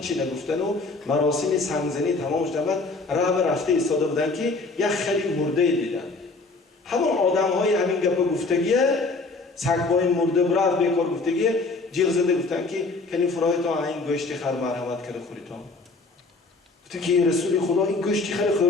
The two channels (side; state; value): right; quieter; 3.6 dB